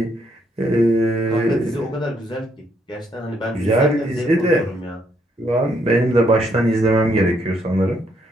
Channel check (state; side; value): normal; both; correlation 0.73